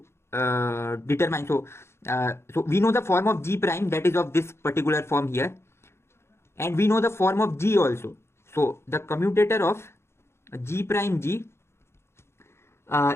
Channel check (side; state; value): right; late; 0.12 ms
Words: determine. So we know the form of g prime, that is of this particular form here. and we know the form of G also. So the commutator of G prime G